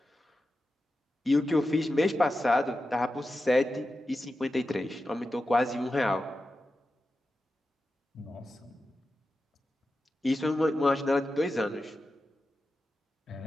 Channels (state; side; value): normal; both; correlation 0.91